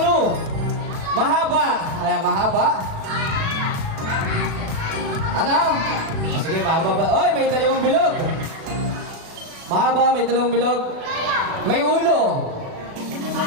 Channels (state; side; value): late; left; 36 ms